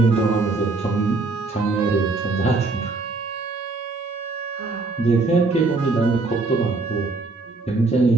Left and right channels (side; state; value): left; quieter; 3.6 dB